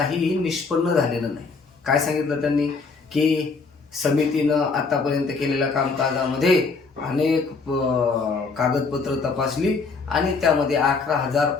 निष्पन्न झालेलं नाही. काय सांगितलं त्यांनी की समितीनं आतापर्यंत केलेल्या कामकाजामध्ये अनेक कागदपत्र तपासली आणि त्यामध्ये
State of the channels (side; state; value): right; quieter; 4.5 dB